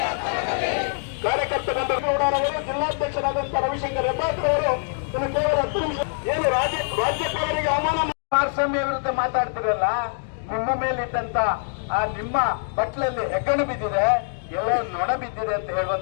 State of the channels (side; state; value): right; silent; digital silence